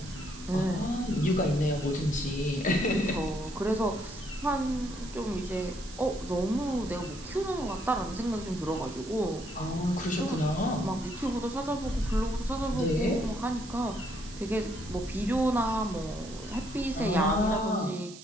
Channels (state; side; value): noise; right; hiss, 16 dB below the sound